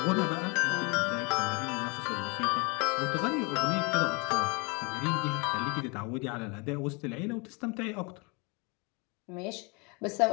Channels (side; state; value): right; quieter; 30.1 dB